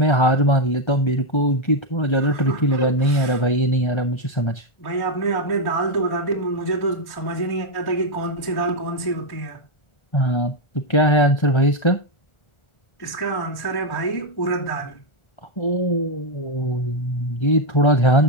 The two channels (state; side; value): late; right; 1.4 ms